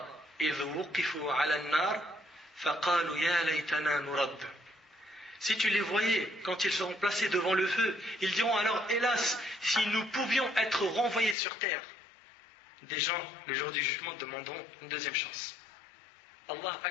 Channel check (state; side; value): drops out; right; at 11.4 s